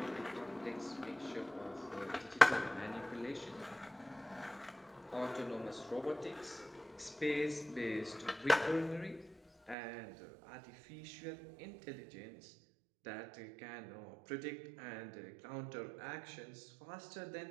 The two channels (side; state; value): left; drops out; at 9.8 s